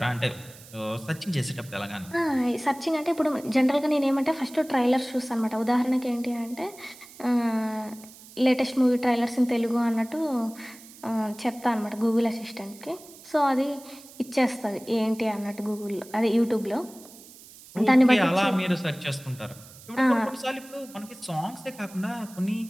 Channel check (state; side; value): noise; right; hiss, 20 dB below the sound